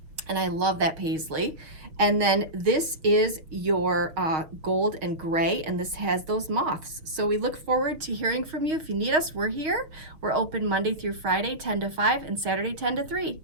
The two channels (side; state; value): left; late; 6.1 ms